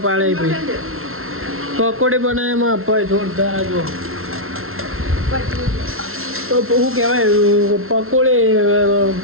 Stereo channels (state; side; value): late; left; 0.62 ms